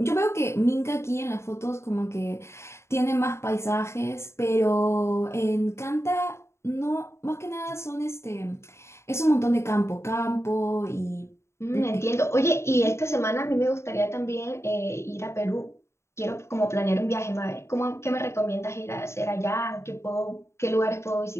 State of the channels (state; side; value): late; right; 0.13 ms